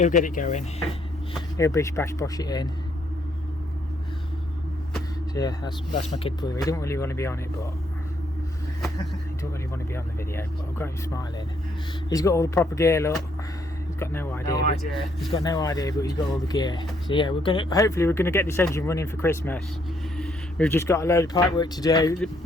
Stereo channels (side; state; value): both; normal; correlation 0.71